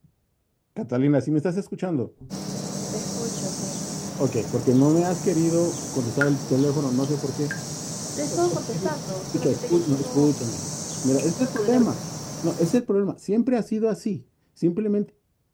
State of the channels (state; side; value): identical; both; correlation 1.00